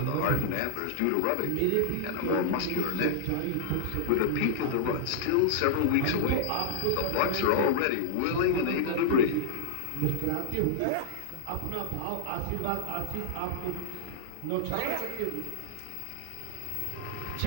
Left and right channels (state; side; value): different; both; correlation -0.01